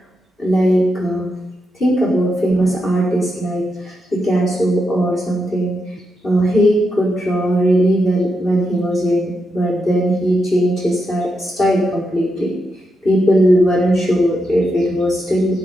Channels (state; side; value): normal; both; correlation 0.84